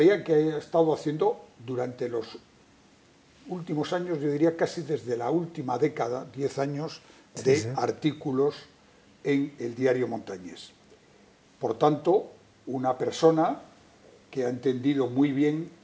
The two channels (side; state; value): both; identical; correlation 1.00